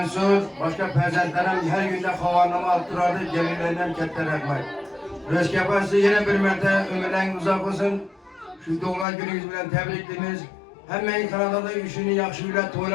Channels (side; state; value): right; drops out; at 9.1 s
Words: başka fezentlerim her günde havanımı attırardı, gelirlerinden ketler ekmek. Röskepası yine bir mertebe ömürleriniz uzak olsun. Şu doğma gününüz bilen tebriklimiz. Hemen Kanada'da işini yakşı bile